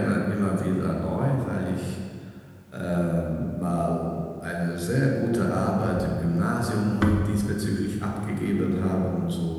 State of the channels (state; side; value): identical; both; correlation 1.00